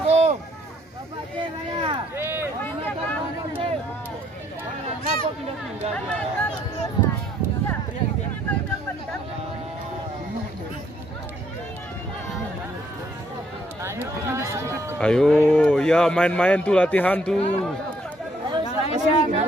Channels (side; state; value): both; normal; correlation 0.68